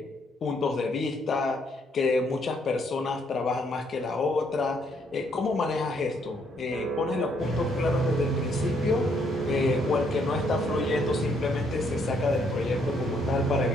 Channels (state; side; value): normal; both; correlation 0.70